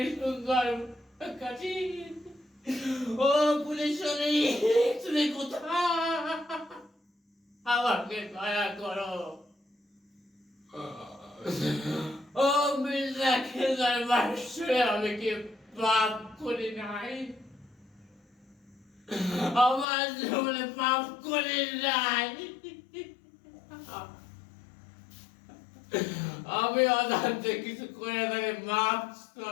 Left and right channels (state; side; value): drops out; right; at 19.9 s